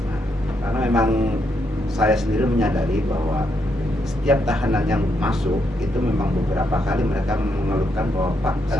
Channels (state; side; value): normal; both; correlation 0.78